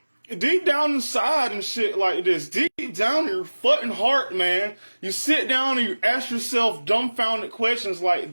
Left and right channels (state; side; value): inverted; both; correlation -1.00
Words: deep down inside and shit like this, deep down in your fucking heart, man, you sit down and you ask yourself dumbfounded questions like,